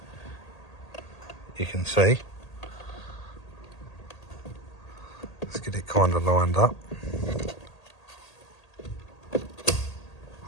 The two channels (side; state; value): right; late; 1.8 ms